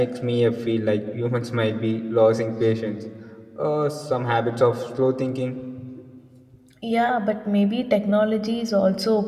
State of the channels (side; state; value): both; identical; correlation 1.00